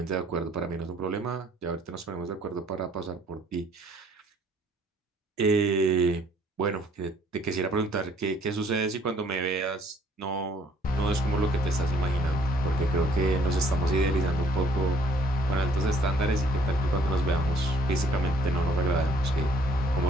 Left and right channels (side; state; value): both; normal; correlation 0.62